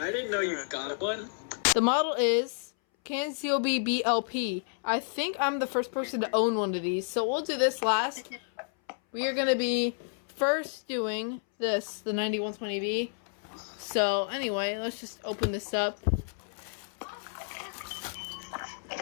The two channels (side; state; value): right; silent; 58 dB below the other